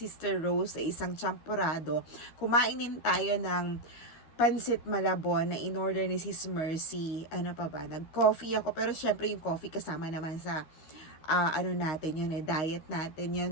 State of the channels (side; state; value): right; late; 13 ms